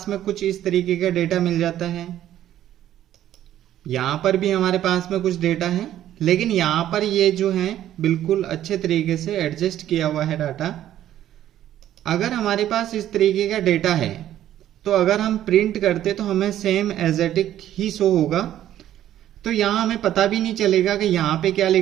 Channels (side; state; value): left; quieter; 12.1 dB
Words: में कुछ इस तरीके का डेटा मिल जाता है। यहाँ पर भी हमारे पास में कुछ डेटा है, लेकिन यहाँ पर ये जो है बिल्कुल अच्छे तरीके से एडजस्ट किया हुआ है डाटा। अगर हमारे पास इस तरीके का डेटा है तो अगर हम प्रिंट करते तो हमें सेम एज इट इज ही शो होगा। तो यहाँ हमें पता भी नहीं चलेगा कि यहाँ पे क्या